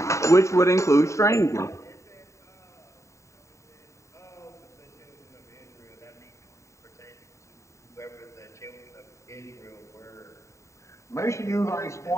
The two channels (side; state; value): right; late; 0.14 ms